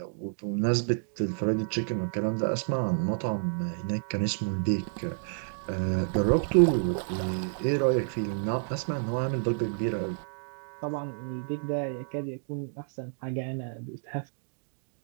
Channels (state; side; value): silent; left; digital silence